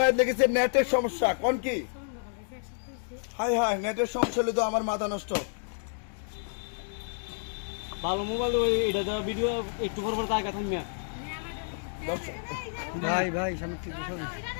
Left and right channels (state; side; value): silent; right; digital silence